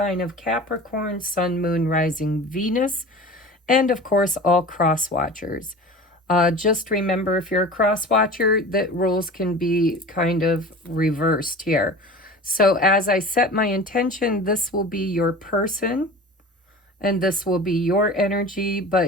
of Capricorn, Sun, Moon, Rising, Venus, and of course all cross watchers. Just remember, if you're a cross watcher, that roles can be kind of reversed here. So as I set my intention, this will be your person and this will be your energy,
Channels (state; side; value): normal; both; correlation 0.37